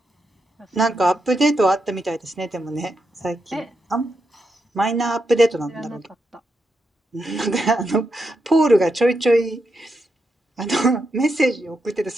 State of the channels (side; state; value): both; normal; correlation 0.84